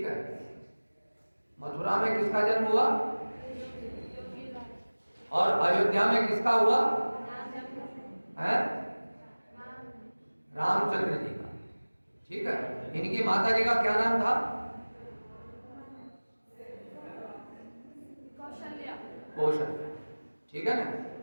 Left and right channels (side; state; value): both; inverted; correlation -1.00